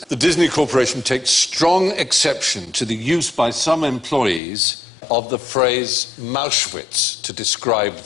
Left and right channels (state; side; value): drops out; right; at 4.4 s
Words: The Disney Corporation takes strong exception to the use by some employees of the phrase Mauschwitz to describe